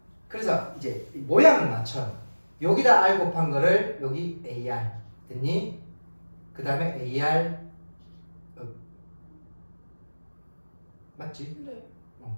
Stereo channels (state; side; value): inverted; both; correlation -1.00